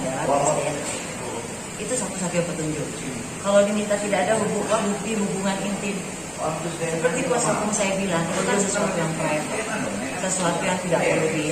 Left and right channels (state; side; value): identical; both; correlation 1.00